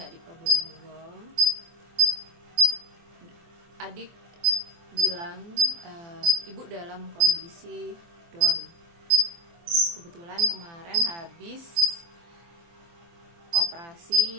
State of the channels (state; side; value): late; left; 24 ms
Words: di Probolinggo. Adik bilang ibu dalam kondisi down. Kebetulan kemarin habis